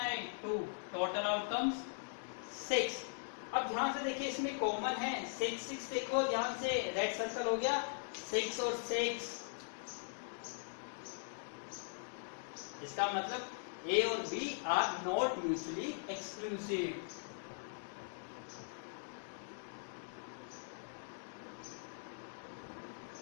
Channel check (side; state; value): right; silent; digital silence